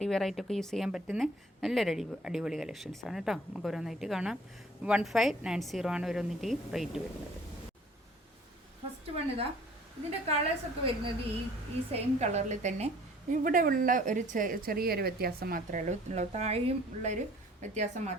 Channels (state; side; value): normal; both; correlation 0.53